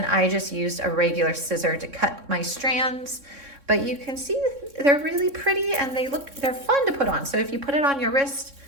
I just used a regular scissor to cut my strands. But you can see they're really pretty, and they're fun to put on. So if you put it on your wrist,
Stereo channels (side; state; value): left; late; 3.6 ms